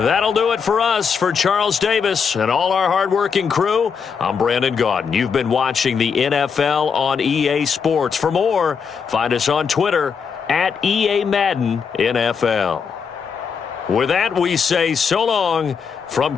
do it for us. For Charles Davis and all our hardworking crew, I'm Brandon Gaudin. You've been watching the NFL on EA Sports. For more, find us on Twitter at EA Madden NFL. With that, we say so long from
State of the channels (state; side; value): quieter; right; 6.2 dB